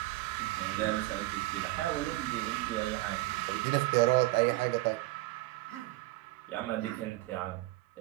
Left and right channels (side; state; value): left; quieter; 19.6 dB